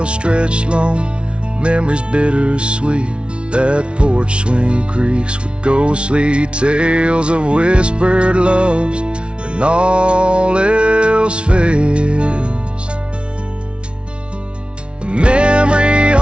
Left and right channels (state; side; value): late; left; 0.058 ms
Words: stretched long, memories bittersweet. That porch swing creaks with ghostly tales of whispered loves, and all else fails. The memory